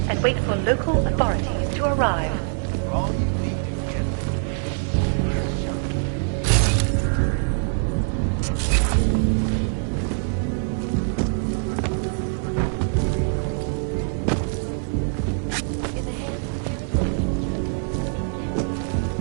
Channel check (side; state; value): left; silent; 62 dB below the other